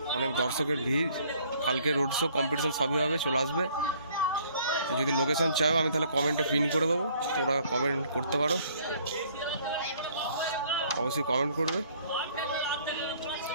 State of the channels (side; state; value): both; inverted; correlation -0.59